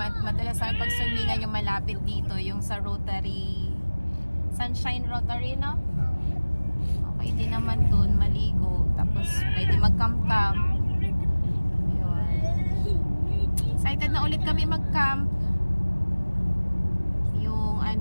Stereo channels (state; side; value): inverted; both; correlation -1.00